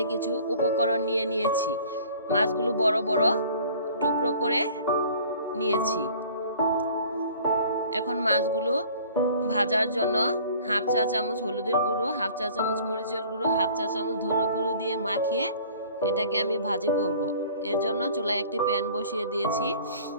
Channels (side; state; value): both; inverted; correlation -0.50